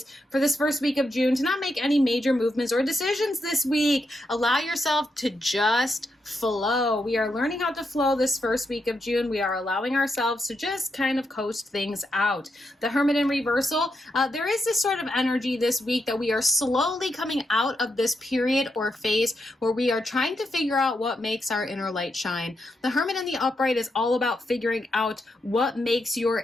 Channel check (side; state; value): both; normal; correlation 0.83